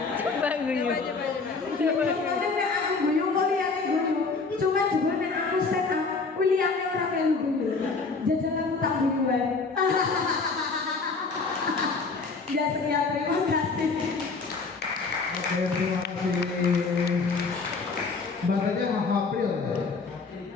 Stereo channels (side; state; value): right; quieter; 4.3 dB